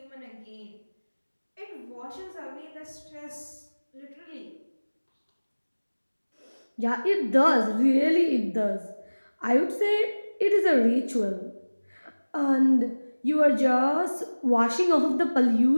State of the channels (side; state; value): both; inverted; correlation -1.00